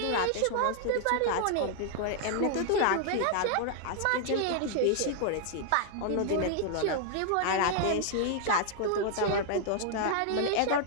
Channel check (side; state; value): both; different; correlation 0.00